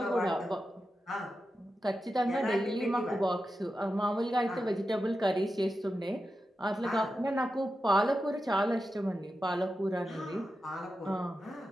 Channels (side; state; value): both; normal; correlation 0.90